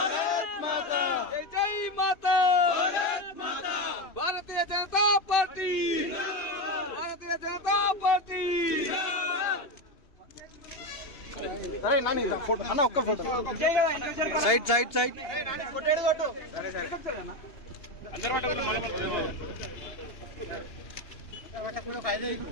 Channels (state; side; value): late; right; 2.8 ms